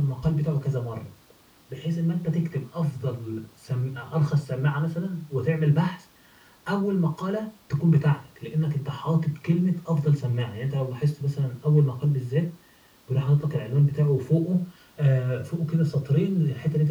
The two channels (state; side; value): identical; both; correlation 1.00